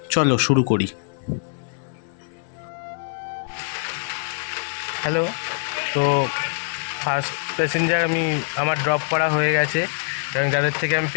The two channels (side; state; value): right; silent; 63 dB below the other